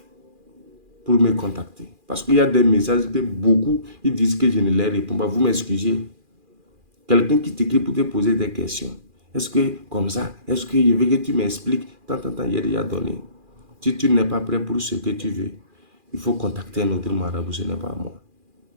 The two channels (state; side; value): late; left; 2.4 ms